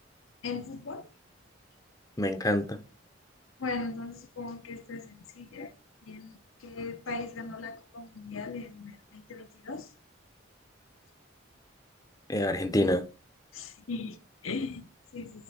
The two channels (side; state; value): both; normal; correlation 0.51